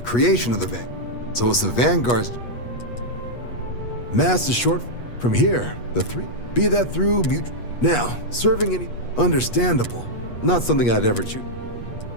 creation of the Vanguard. So it's the Vanguard's... Mass is short from here, the three. Be that through mutual... Now, serving any... Understandable. Not something I'd ever choose.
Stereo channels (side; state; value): right; late; 8.3 ms